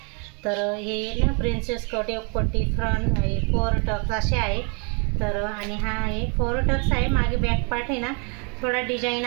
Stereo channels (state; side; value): quieter; left; 35.4 dB